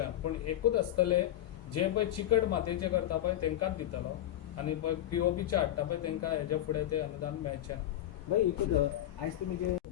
पूण एकूच आसतलें जे पळय चिकट मातयेचे करता पळय तेंकाच दितलो आनी पळय POPचे हाडटा पळय तेंकां हेजे फुडें ते अनुदान मेळचें ना. भाई एकूच आयज तुमी जे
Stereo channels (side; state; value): right; quieter; 12.7 dB